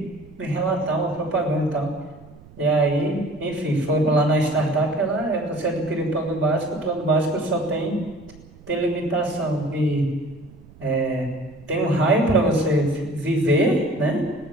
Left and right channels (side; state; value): right; noise; rumble, 23 dB below the sound